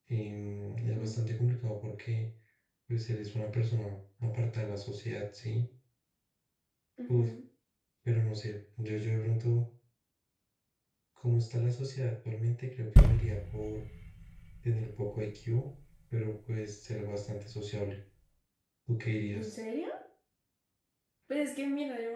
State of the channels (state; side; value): identical; both; correlation 1.00